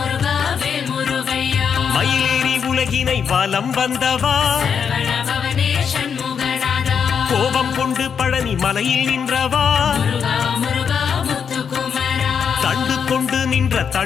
வேல் முருகையா, மயிலேறி உலகினை வலம் வந்தவா, சரவண பவனே சண்முகநாதா, கோபம் கொண்டு பழனி மலையில் நின்றவா, முருகா முருகா முத்துக்குமரா, தண்டு கொண்டு நின்ற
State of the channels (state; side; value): quieter; right; 7.0 dB